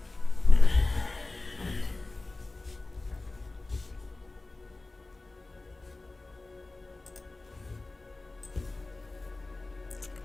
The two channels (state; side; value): quieter; right; 3.2 dB